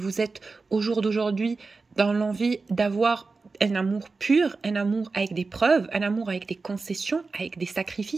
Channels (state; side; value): quieter; left; 4.1 dB